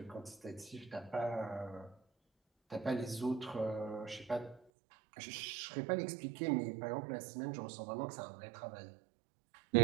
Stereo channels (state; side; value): drops out; left; at 4.6 s